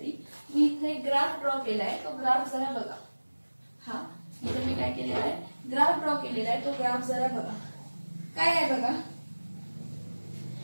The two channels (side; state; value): both; inverted; correlation -1.00